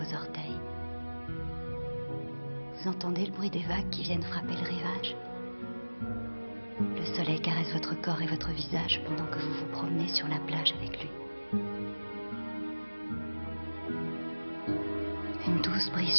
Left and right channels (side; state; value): both; inverted; correlation -1.00